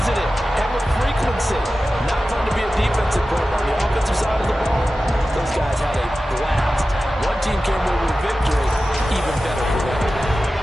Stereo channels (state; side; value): normal; both; correlation 0.94